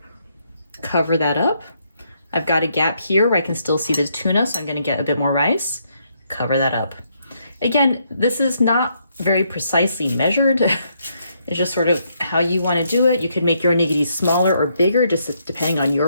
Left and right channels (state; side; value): inverted; both; correlation -0.74